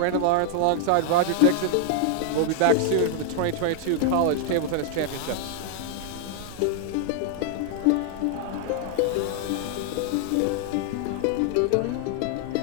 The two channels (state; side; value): different; both; correlation 0.00